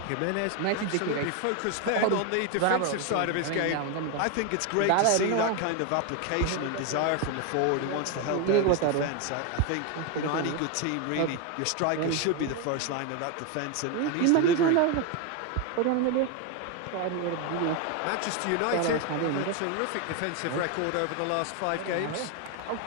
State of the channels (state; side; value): different; both; correlation 0.01